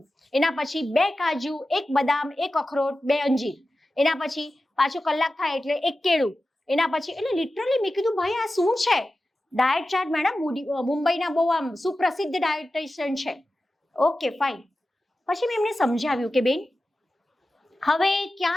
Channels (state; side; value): normal; both; correlation 0.94